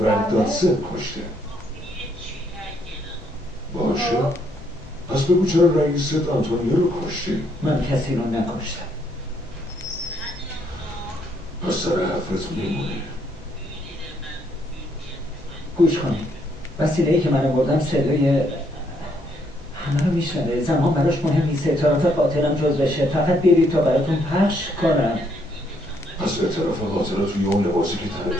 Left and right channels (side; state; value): both; normal; correlation 0.71